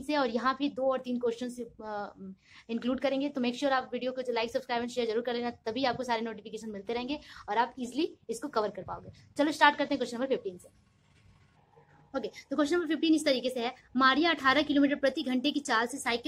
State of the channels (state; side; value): identical; both; correlation 1.00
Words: से, और यहाँ भी 2 और 3 क्वेश्चन इंक्लूड करेंगे. तो मेक श्योर आप वीडियो को लाइक सब्सक्राइब एंड शेयर जरूर कर लेना, तभी आपको सारे नोटिफिकेशन मिलते रहेंगे और आप इजिली इसको कवर कर पाओगे. चलो स्टार्ट करते हैं क्वेश्चन नंबर 15 से. ओके, तो क्वेश्चन नंबर 15 इस तरीके से है. मारिया 18 किलोमीटर प्रति घंटे की चाल से